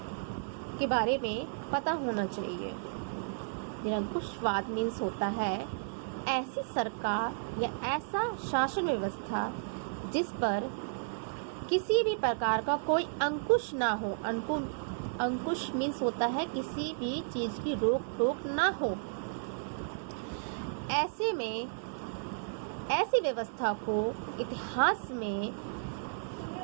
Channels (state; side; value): silent; left; digital silence